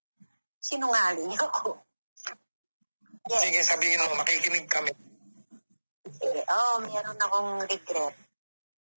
sinungaling ako. Yes. Sige, sabihin mo, makikinig kami. Sige, meron akong regret.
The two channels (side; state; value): both; inverted; correlation -1.00